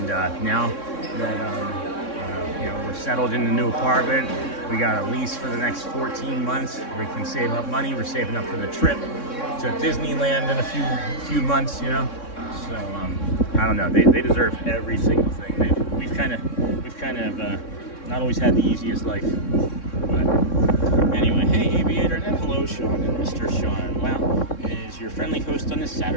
now that you know, we're settled in the new apartment, we got a lease for the next 14 months. We can save up money. We're saving up for the trip to Disneyland in a few months, you know. So I don't know. They deserve every single thing. We've kind of not always had the easiest life. But anyway, hey Aviator, and then hello Sean and Mr. Sean. Wow, is your friendly host on this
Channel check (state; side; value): late; right; 3.6 ms